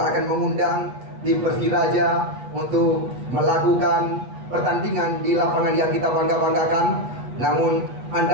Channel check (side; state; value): left; late; 8.3 ms